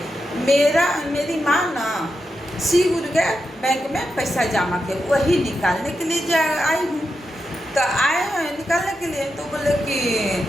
मेरी माँ ना श्री गुरु के बैंक में पैसा जमा के वही निकालने के लिए आई हूँ। तो आए हैं निकालने के लिए। तो बोले कि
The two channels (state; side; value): normal; both; correlation 0.87